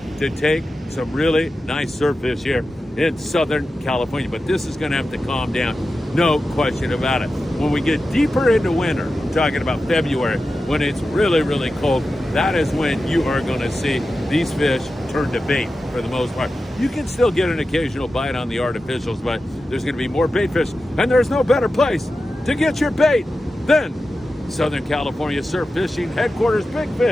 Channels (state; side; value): normal; both; correlation 0.92